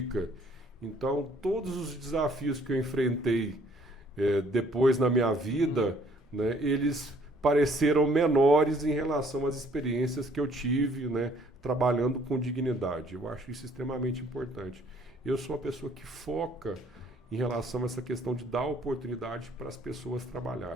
Então, todos os desafios que eu enfrentei depois na minha vida, né, eles pareceram menores em relação às experiências que eu tive, né, trabalhando com dignidade. Eu acho isso extremamente importante. Eu sou uma pessoa que foca em relação a essa questão de dar oportunidade para as pessoas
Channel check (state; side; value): normal; both; correlation 0.61